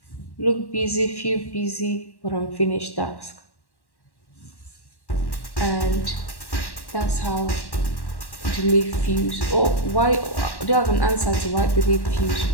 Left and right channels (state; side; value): late; right; 1.1 ms